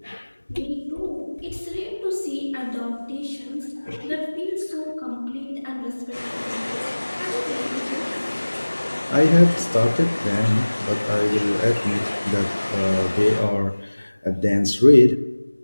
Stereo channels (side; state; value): both; inverted; correlation -1.00